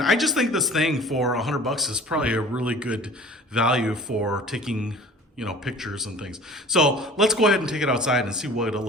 I just think this thing for $100 is probably a really good value for taking, you know, pictures and things. So let's go ahead and take it outside and see what it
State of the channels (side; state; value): both; normal; correlation 0.44